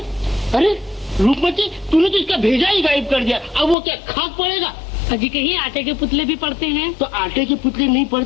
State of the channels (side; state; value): right; drops out; at 3.8 s